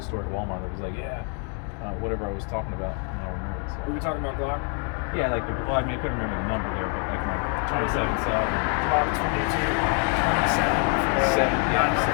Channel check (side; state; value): right; quieter; 37.5 dB